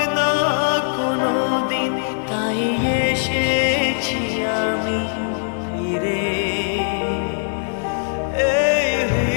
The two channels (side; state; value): right; silent; digital silence